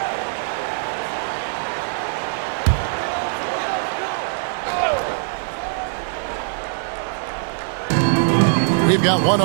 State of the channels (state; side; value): silent; left; digital silence